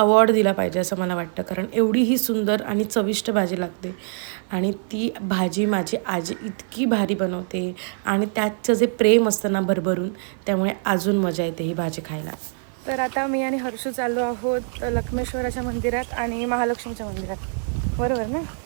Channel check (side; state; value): left; silent; 60 dB below the other